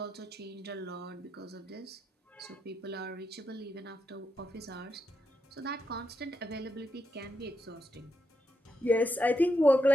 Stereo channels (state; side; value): normal; both; correlation 0.83